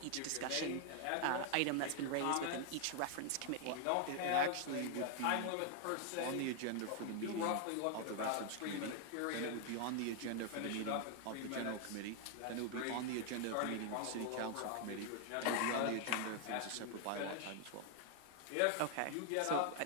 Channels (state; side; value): different; both; correlation 0.00